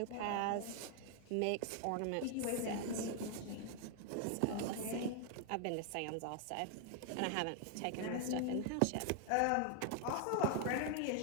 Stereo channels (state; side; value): different; both; correlation 0.00